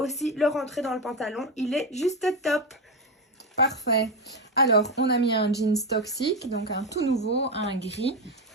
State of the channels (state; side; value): normal; both; correlation 0.13